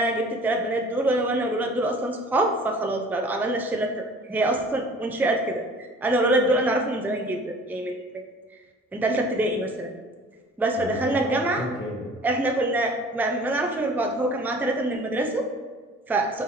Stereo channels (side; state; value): both; normal; correlation 0.47